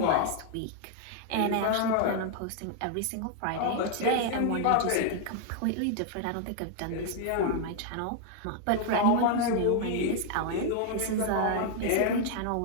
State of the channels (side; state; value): both; different; correlation 0.00